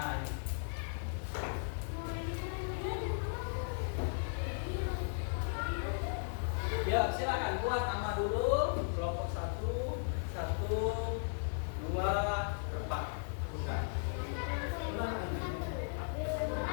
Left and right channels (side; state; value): right; silent; digital silence